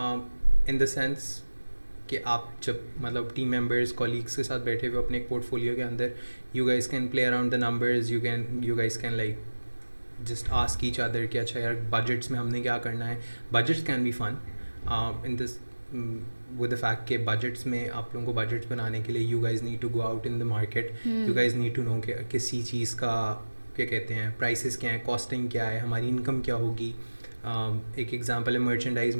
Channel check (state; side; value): inverted; both; correlation -1.00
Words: in the sense कि आप जब मतलब team members colleagues के साथ बैठे हुए अपने एक पोर्टफोलियो के अंदर, you guys can play around the numbers. You guys can like just ask each other कि अच्छा यार budgets में हमने क्या करना है. Budgets can be fun in this with the fact कि budgets में आप लोगों को budgets बनाने के लिए you guys need to go out in the market. You guys need to know कि किसी चीज़ का क्या कहते हैं prices क्या है, costing क्या है, हमारी income क्या होगी. एक एग्जांपल है